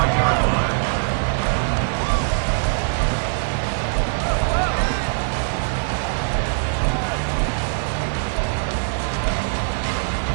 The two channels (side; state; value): left; silent; digital silence